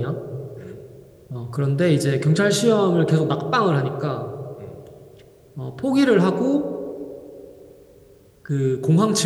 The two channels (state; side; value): identical; both; correlation 1.00